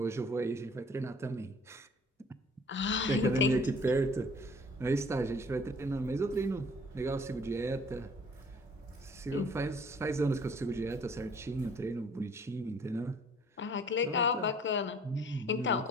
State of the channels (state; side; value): normal; both; correlation 0.54